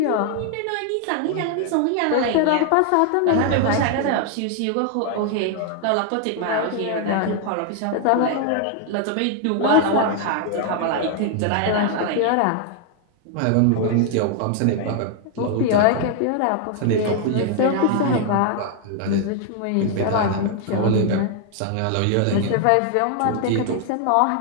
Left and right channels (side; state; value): both; different; correlation 0.00